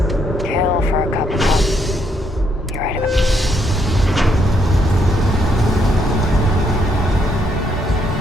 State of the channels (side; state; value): both; normal; correlation 0.73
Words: you? Kill for a cup of coffee. You're right about